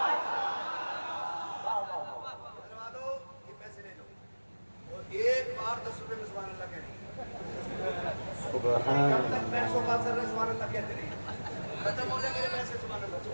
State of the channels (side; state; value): both; inverted; correlation -1.00